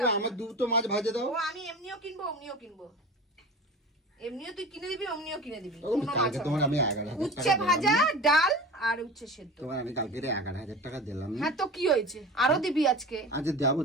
আমার দুটো মাছ ভাজে দাও। আমি এমনিও কিনবো, অমনিও কিনবো। এমনিও তুই কিনে দিবি, অমনিও কিনে দিবি। তোমার আমি 11,000 উচ্ছে ভাজা, ডাল আর উচ্ছে সেদ্ধ। তোমার আমি কালকে 11,000 টাকা দিলাম। হ্যাঁ তো কি হয়েছে, আরো দিবি আজকে? আচ্ছা দেবো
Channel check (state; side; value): normal; both; correlation 0.34